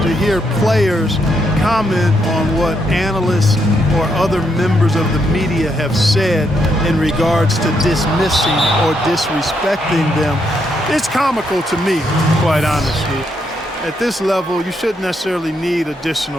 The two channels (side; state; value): both; normal; correlation 0.78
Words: hear players comment on what analysts or other members of the media have said in regards to dismissing or disrespecting them. It's comical to me, quite honestly. At this level, you shouldn't necessarily need